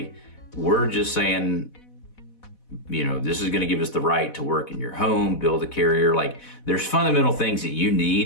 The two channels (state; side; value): late; right; 4.1 ms